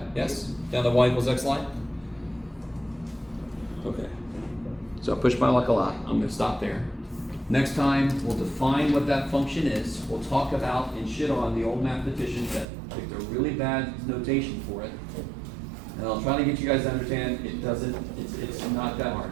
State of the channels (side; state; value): left; drops out; at 12.7 s